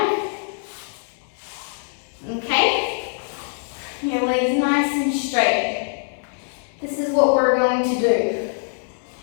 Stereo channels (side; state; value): right; silent; 57 dB below the other